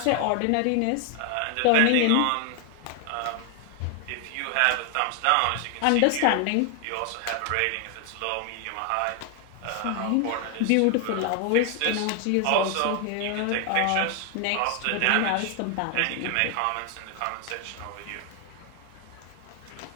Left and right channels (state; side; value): different; both; correlation 0.00